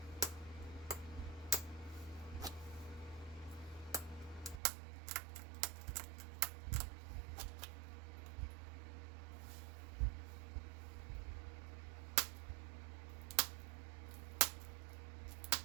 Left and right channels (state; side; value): drops out; left; at 4.6 s